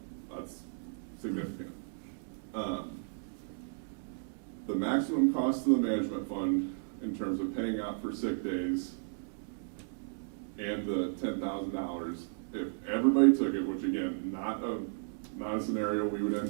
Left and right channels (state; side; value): silent; left; digital silence